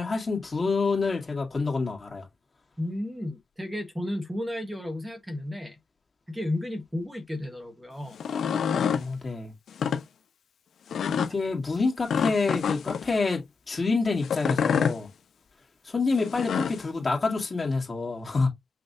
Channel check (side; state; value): right; quieter; 4.2 dB